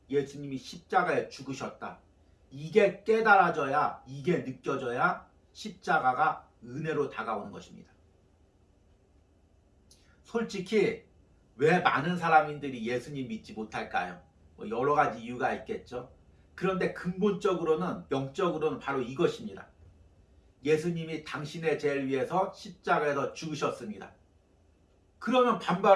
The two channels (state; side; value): identical; both; correlation 1.00